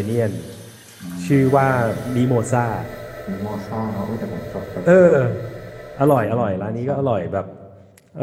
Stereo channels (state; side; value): identical; both; correlation 1.00